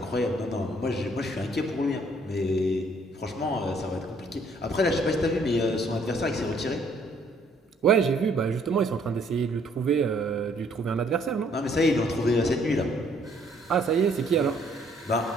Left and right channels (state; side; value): normal; both; correlation 0.64